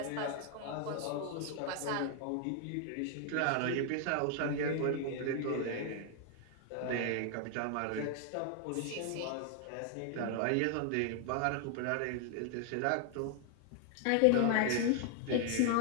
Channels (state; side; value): different; both; correlation 0.00